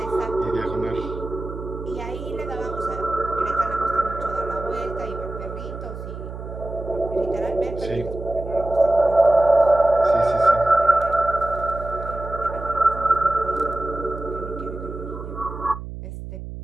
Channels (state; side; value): noise; right; hum, 10 dB below the sound